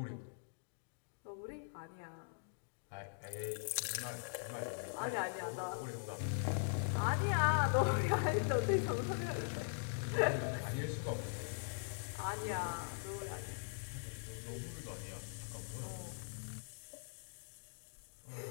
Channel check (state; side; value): silent; right; digital silence